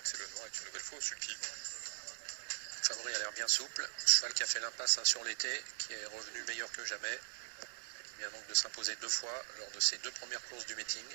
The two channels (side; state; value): left; silent; digital silence